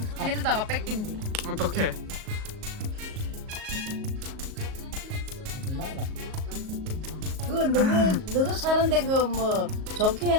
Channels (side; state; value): left; late; 38 ms